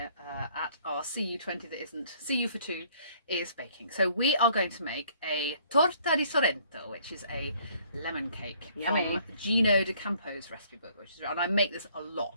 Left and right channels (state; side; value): inverted; both; correlation -0.61